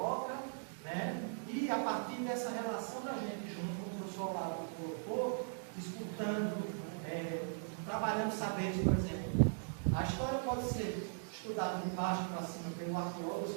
né? E a partir dessa relação da gente junto, como o professor Olavo colocou, disputando, trabalhando saberes, por exemplo. A história pode ser estudada de baixo para cima pelo arqueólogo, ou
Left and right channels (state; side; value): silent; left; digital silence